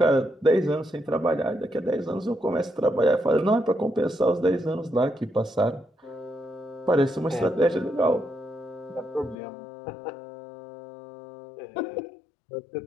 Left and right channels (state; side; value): drops out; right; at 9.3 s